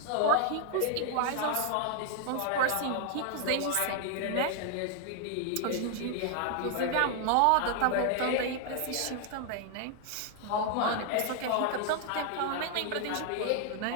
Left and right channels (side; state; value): both; different; correlation 0.00